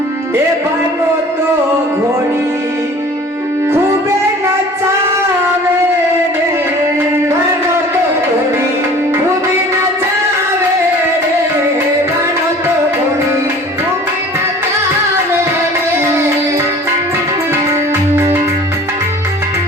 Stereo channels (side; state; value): both; normal; correlation 0.46